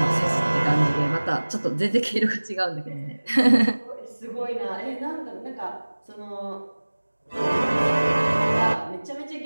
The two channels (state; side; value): inverted; both; correlation -1.00